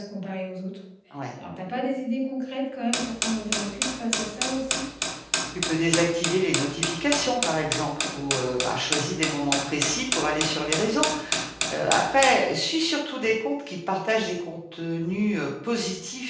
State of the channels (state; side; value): identical; both; correlation 1.00